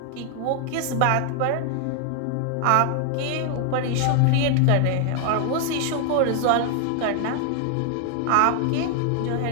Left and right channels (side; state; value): both; different; correlation 0.00